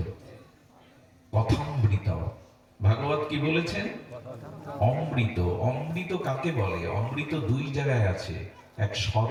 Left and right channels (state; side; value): identical; both; correlation 1.00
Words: কথামৃত। ভাগবত কি বলেছেন? অমৃত। অমৃত কাকে বলে? অমৃত 2 জায়গায় আছে, এক